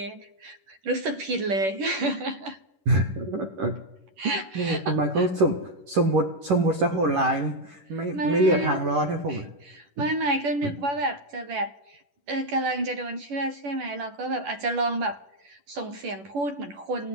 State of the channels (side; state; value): left; late; 10 ms